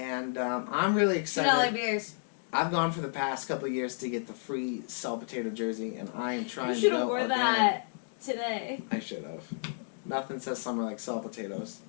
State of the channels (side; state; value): right; silent; digital silence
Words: I'm really $2 excited. beers. I've gone for the past couple of years to get the free Salt Potato jersey, and I am trying You to should go have wore again. that today. I should have. Nothing says summer like salt potatoes.